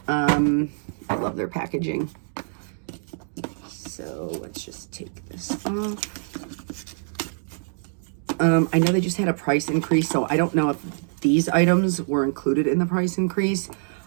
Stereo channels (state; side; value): silent; left; digital silence